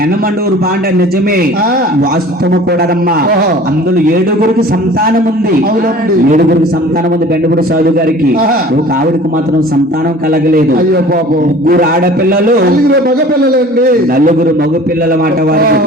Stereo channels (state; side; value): normal; both; correlation 0.45